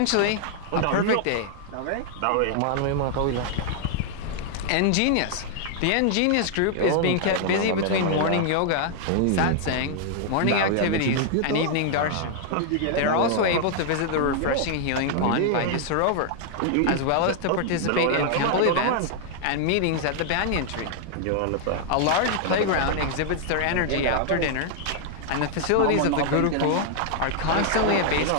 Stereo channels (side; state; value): both; different; correlation 0.00